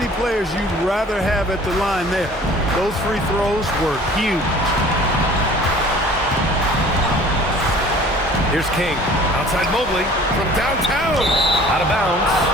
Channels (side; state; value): both; normal; correlation 0.48